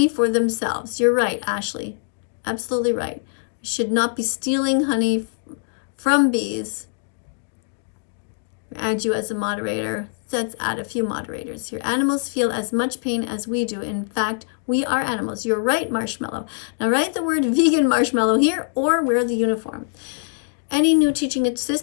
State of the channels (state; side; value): silent; right; digital silence